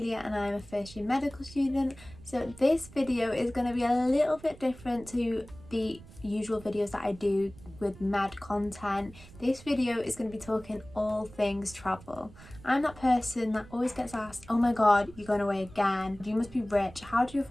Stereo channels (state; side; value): noise; right; rumble, 20 dB below the sound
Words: and I'm a first year medical student. So this video is going to be a little bit different to the usual videos that I do with med content. This video is going to be talking all things travel. I'm that person that always gets asked, oh my god, you're going away again, you must be rich, how do you